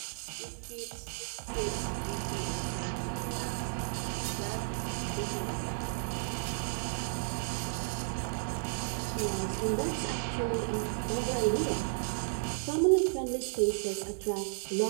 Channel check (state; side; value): silent; left; digital silence